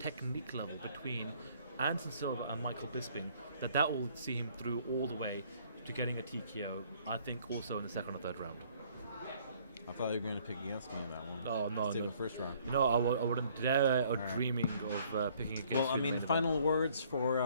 level between Anderson Silva and Michael Bisping that will see him through all the way to getting a TKO, I think also in the second or third round. I thought you were going to pick against me in that one. Oh, no. Let's take the first round. No, I wouldn't dare or dreaming of picking against Well, I you in mean, the main final event. words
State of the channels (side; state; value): both; inverted; correlation -0.61